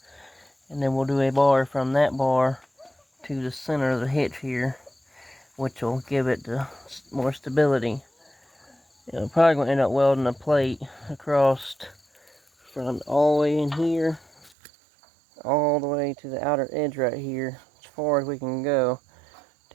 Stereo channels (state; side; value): drops out; left; at 14.5 s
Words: and then we'll do a bar from that bar to the center of the hitch here, which will give it more stability. We're probably going to end up welding a plate across from all the way in here all the way to the outer edge right here, as far as we can go,